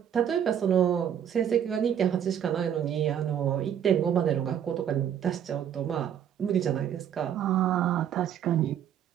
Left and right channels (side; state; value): left; quieter; 9.3 dB